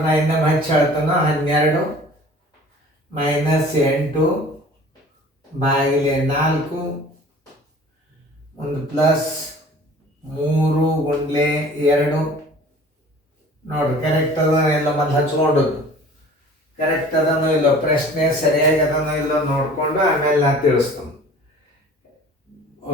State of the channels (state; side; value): normal; both; correlation 0.46